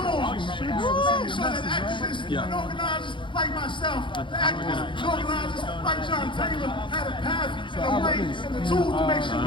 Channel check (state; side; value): late; right; 0.24 ms